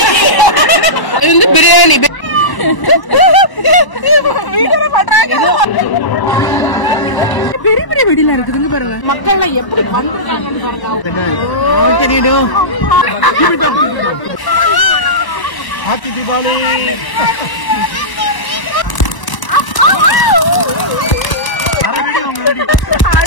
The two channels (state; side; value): late; right; 1.0 ms